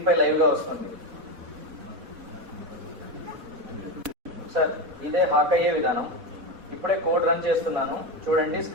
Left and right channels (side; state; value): left; late; 4.1 ms